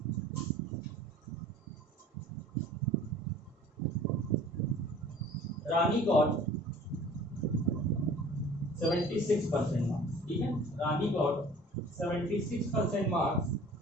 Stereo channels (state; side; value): normal; both; correlation 0.47